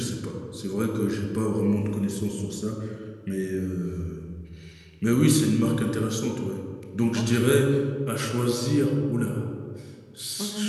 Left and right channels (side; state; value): both; identical; correlation 1.00